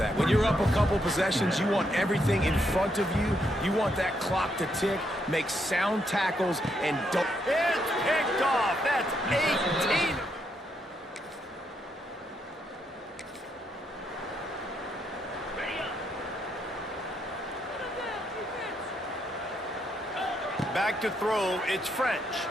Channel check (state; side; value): normal; both; correlation 0.77